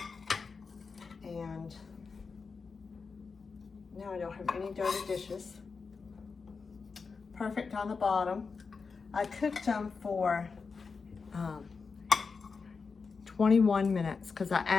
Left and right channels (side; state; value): right; quieter; 4.9 dB